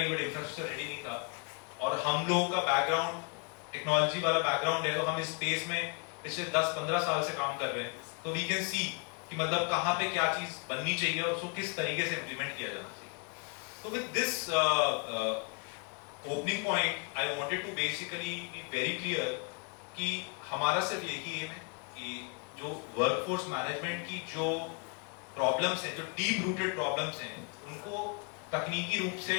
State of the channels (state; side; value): quieter; right; 35.7 dB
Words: बट इंफ्रास्ट्रक्चर रेडी नहीं था, और हम लोगों का बैकग्राउंड टेक्नोलॉजी वाला बैकग्राउंड है, तो हम इस स्पेस में पिछले 10-15 साल से काम कर रहे हैं, तो वी कैन सी कि मतलब कहां पे क्या चीज बननी चाहिए और उसको किस तरीके से इंप्लीमेंट किया जाना चाहिए। तो with this opening point I wanted to basically be very clear कि हमारा सिर्फ यही है कि जो वर्कफोर्स मैनेजमेंट की जो प्रॉब्लम्स हैं, जो डीप रूटेड प्रॉब्लम्स हैं, उनको तकनीकी रूप से